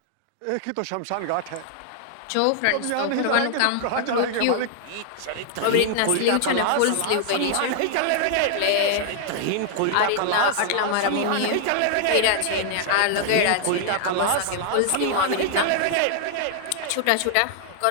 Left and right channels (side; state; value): both; different; correlation -0.01